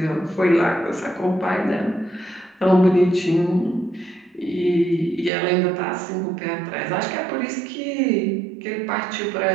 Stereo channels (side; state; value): left; drops out; at 5.3 s